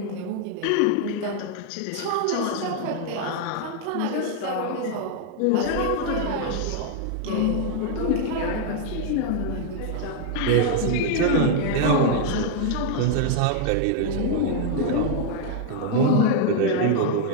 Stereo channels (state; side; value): different; both; correlation 0.00